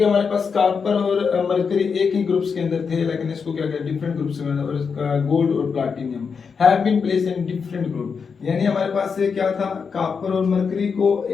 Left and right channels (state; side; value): quieter; right; 5.8 dB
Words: हमारे पास कॉपर और मरकरी एक ही ग्रुप्स के अंदर थे, लेकिन इसको क्या किया डिफरेंट ग्रुप्स में, और गोल्ड और platinum have been placed in different group. यानी हमारे पास क्या था, कॉपर और मरकरी को